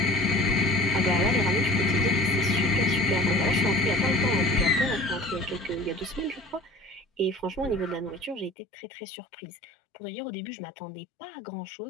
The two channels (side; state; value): right; drops out; at 8.5 s